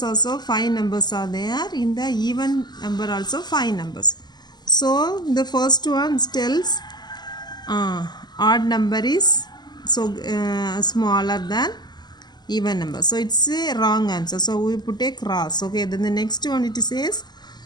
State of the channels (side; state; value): right; late; 0.21 ms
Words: also 5 numbers are there, in the even number also 5 numbers. So the first one tells odd number is so smaller than even number, so it's a wrong answer, so we put a cross. Okay, then the next one it says